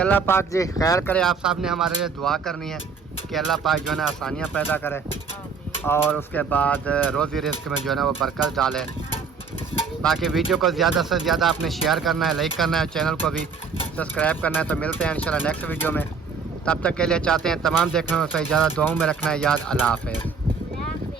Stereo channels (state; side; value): quieter; left; 5.3 dB